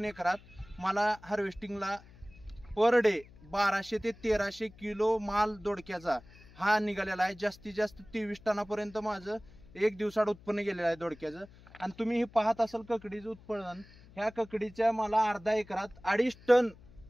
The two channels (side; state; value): left; noise; hum, 23 dB below the sound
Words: एकरात मला हार्वेस्टिंगला पर डे 1200 ते 1300 किलो माल दोडक्याचा हा निघालेला आहे. जास्तीत जास्त 23 टनापर्यंत माझं एक दिवसाड उत्पन्न गेलेलं आहे दोडक्याचं. आणि तुम्ही हे पाहत असाल ककडीचं उत्पादन, ह्या ककडीच्या मला अर्धा एकरात 2.5 टन